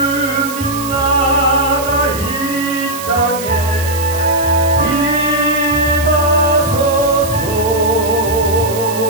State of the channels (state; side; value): noise; right; hiss, 11 dB below the sound